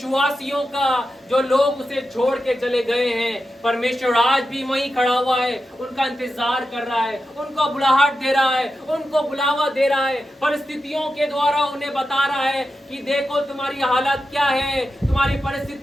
का, जो लोग उसे छोड़ के चले गए हैं। परमेश्वर आज भी वहीं खड़ा हुआ है, उनका इंतजार कर रहा है, उनको बुलाहट दे रहा है, उनको बुलावा दे रहा है। परिस्थितियों के द्वारा उन्हें बता रहा है कि देखो तुम्हारी हालत क्या है, तुम्हारी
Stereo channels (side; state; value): both; normal; correlation 0.90